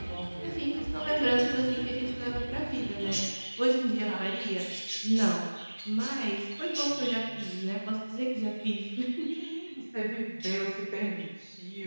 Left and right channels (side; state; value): both; inverted; correlation -1.00